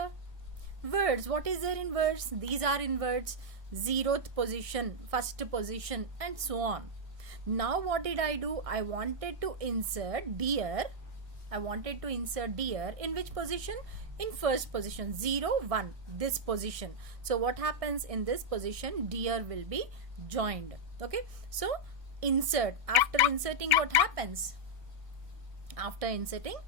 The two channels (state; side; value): late; left; 1.6 ms